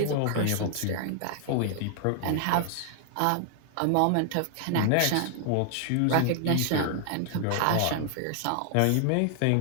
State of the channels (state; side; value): different; both; correlation 0.00